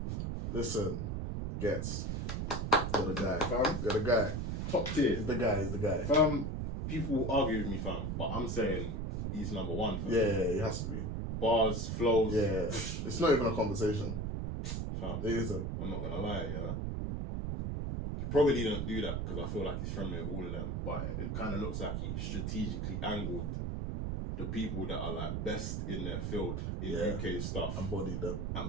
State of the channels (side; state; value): right; noise; rumble, 1 dB below the sound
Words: listen, Gets. You're the guy. Fam? You're the guy. Top tier. He's the guy. Fam, people will argue with me, fam, but I'm saying he's number one, fam. Yeah, he has to be. Bars, flows. Yeah, it's not even a conversation. Fam, It isn't. I'm not gonna lie, yeah. He probably didn't do that because I feel like he's friendly with all of them, but it kind of looks like he strategically angled the people that are like best in their field in UK stuff. Embodied them,